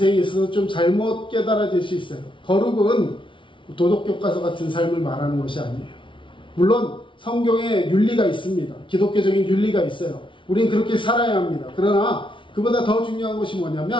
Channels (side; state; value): right; late; 0.25 ms